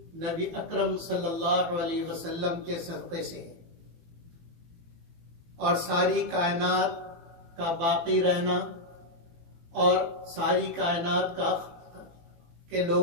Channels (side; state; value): left; late; 18 ms